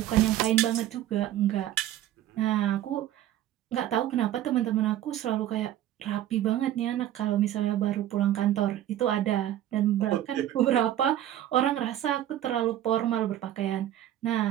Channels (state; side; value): quieter; left; 12.4 dB